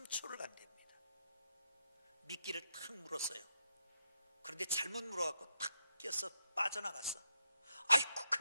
간답니다. 미끼를 탁 물었어요. 그런데 잘못 물어갖고 탁 껴서 빠져나갔어. 아이고,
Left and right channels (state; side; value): inverted; both; correlation -0.82